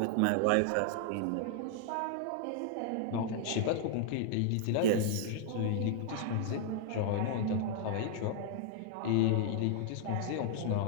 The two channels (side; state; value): both; different; correlation -0.01